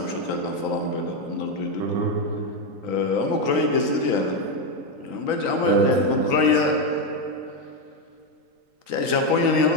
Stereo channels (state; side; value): late; left; 3.9 ms